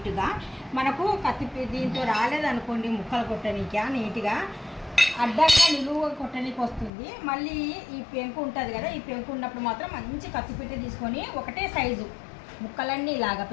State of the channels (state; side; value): drops out; right; at 6.9 s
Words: మనకు కత్తి దీంతో రాలేదనుకోండి ముక్కలు కొట్టనీక నీట్గా అడ్డంగా నిలువుగా కొట్టడానికి వస్తుంది. మళ్ళీ ఈ పెంకు ఉంటుంది కదా, ఈ పెంకు ఉన్నప్పుడు మాత్రం మంచి కత్తిపీట తీసుకొని ఒకటే సైజు ముక్కలన్నీ ఇలాగా